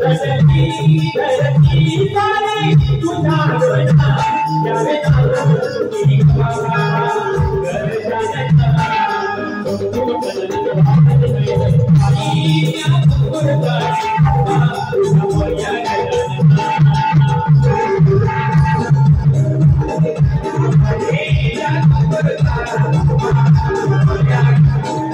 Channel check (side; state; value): both; identical; correlation 1.00